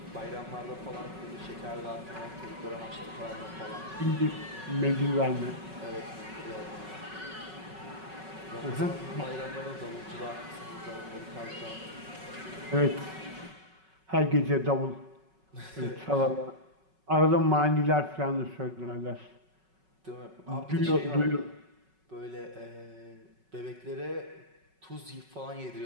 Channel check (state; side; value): late; left; 5.3 ms